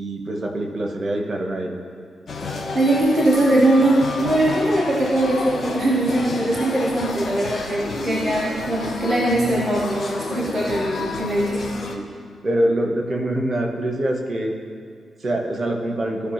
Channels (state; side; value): normal; both; correlation 0.82